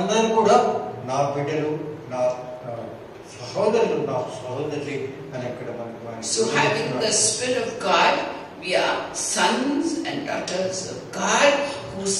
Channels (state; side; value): identical; both; correlation 1.00